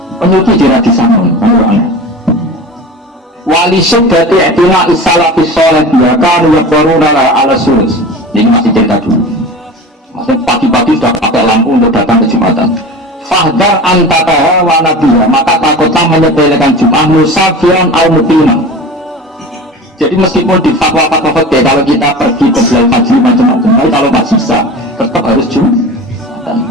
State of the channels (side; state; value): both; normal; correlation 0.34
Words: penyuci tidak disangon. Wali syuddati i'tina isalafi sholat bahkan yakwaruna ala sulus. Ini masih cerita dulu. Maksudnya pagi-pagi sudah pakai lampu untuk datang ke Jumatan. Fahdar antara wa nabiya, maka takutlah menyepelekan Jum'ah musafian al muqimah. Jadi meskipun di fatwa-fatwa fikih kalau kita pergi ke Bilal Fajri macam-macam, tapi kalau nggak bisa tetap harus Jumatan.